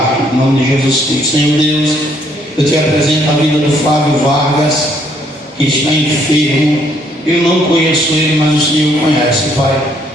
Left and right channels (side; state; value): both; normal; correlation 0.68